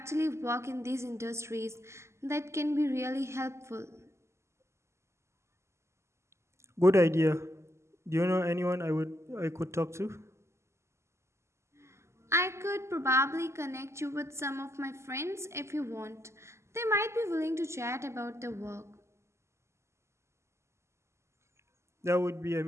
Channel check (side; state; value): left; late; 0.13 ms